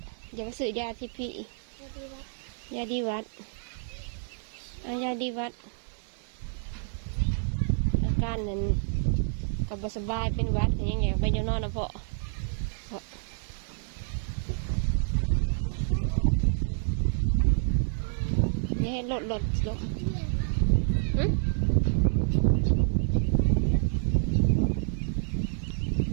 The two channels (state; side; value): silent; left; 59 dB below the other